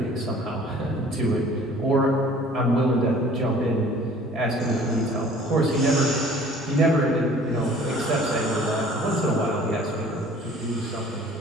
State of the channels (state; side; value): normal; both; correlation 0.50